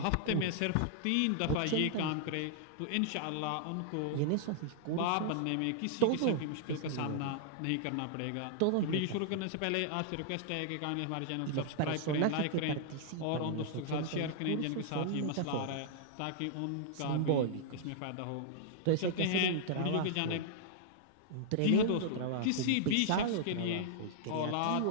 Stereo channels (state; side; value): different; both; correlation -0.01